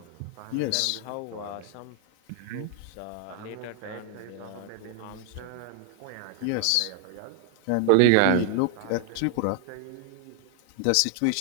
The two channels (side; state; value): both; different; correlation 0.00